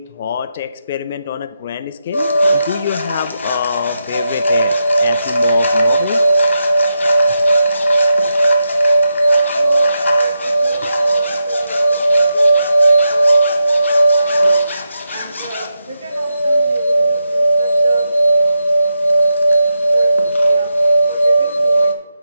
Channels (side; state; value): both; inverted; correlation -0.86